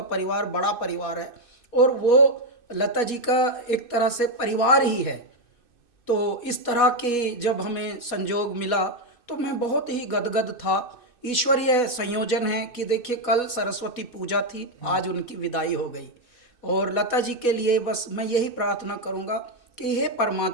परिवार बड़ा परिवार है और वो लता जी का एक तरह से परिवार ही है। तो इस तरह के जब हमें संजोग मिला तो मैं बहुत ही गदगद था। ईश्वरीय संयोजन है कि देखिए कल सरस्वती पूजा थी, आज उनकी विदाई हो गई और लता जी के लिए बस मैं यही प्रार्थना करूंगा कि हे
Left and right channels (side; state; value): right; late; 2.6 ms